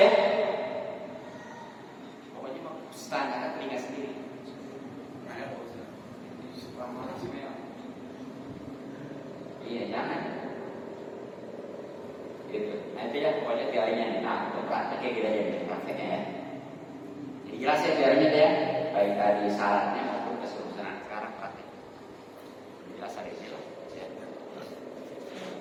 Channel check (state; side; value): identical; both; correlation 1.00